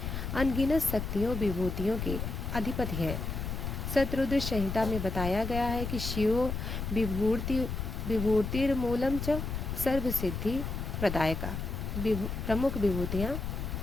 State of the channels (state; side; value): noise; left; rumble, 4 dB below the sound